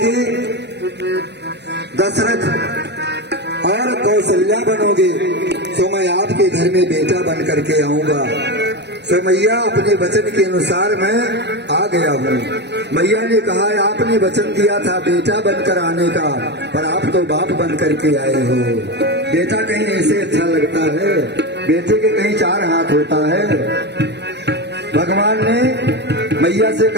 दशरथ और कौशल्या बनोगे, तो मैं आपके घर में बेटा बन करके आऊंगा। तो मैया अपने वचन के अनुसार मैं आ गया हूँ। मैया ने कहा, आपने वचन दिया था बेटा बनकर आने का, पर आप तो बाप बन करके आए हो। बेटा कहीं ऐसे अच्छा लगता है, बेटे के कहीं 4 हाथ होता है। भगवान ने मैया से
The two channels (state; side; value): late; left; 0.50 ms